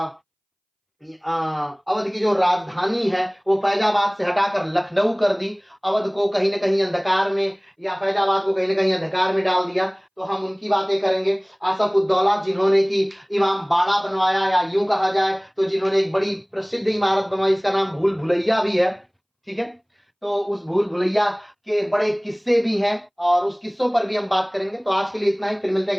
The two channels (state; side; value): identical; both; correlation 1.00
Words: की जो राजधानी है वो फैजाबाद से हटाकर लखनऊ कर दी। अवध को कहीं ना कहीं अंधकार में, या फैजाबाद को कहीं ना कहीं अंधकार में डाल दिया। तो हम उनकी बातें करेंगे। आसफ उद्दौला जिन्होंने कि इमाम बाड़ा बनवाया, या यूं कहा जाए तो जिन्होंने एक बड़ी प्रसिद्ध इमारत बनवाई, इसका नाम भूल भुलैया भी है। ठीक है, तो उस भूल भुलैया के बड़े किस्से भी हैं और उस किस्सों पर भी हम बात करेंगे। तो आज के लिए इतना ही, फिर मिलते